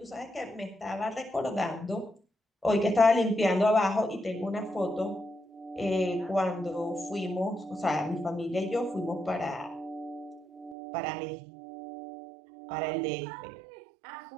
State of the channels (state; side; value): drops out; left; at 10.8 s